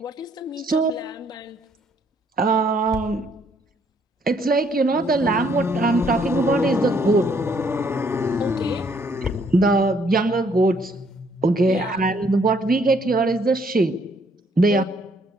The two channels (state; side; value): normal; both; correlation 0.67